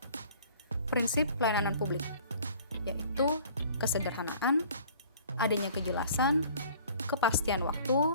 Prinsip pelayanan publik, yaitu kesederhanaan, adanya kejelasan, kepastian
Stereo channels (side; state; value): both; inverted; correlation -0.51